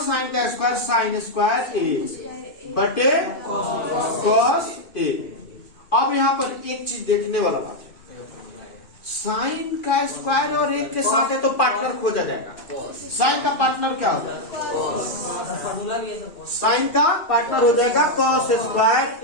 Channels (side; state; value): right; late; 2.7 ms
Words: का स्क्वायर साइन स्क्वायर ए बटे कॉस ए। अब यहाँ पर एक चीज देखने वाला बात है साइन का स्क्वायर और एक के साथ है तो पार्टनर खोजा जाएगा। साइन का पार्टनर क्या हो जाएगा साइन का पार्टनर हो जाएगा कॉस स्क्वायर